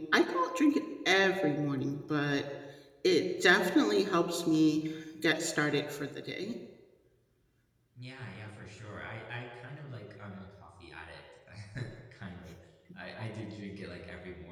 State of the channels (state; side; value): identical; both; correlation 1.00